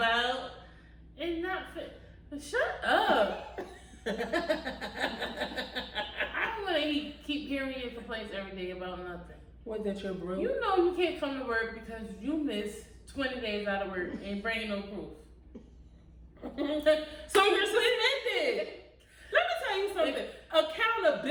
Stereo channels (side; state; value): both; identical; correlation 1.00